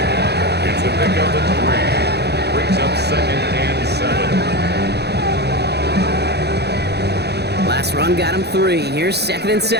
It's a pickup of 3. Brings up 2nd and 7. Last run got him 3. Here's 2nd and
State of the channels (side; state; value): left; late; 0.48 ms